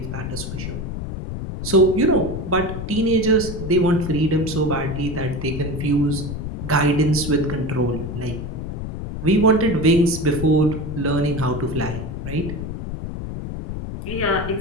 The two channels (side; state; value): left; noise; rumble, 6 dB below the sound